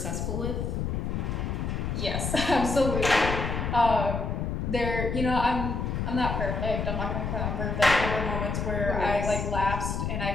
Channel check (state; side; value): noise; left; rumble, 2 dB below the sound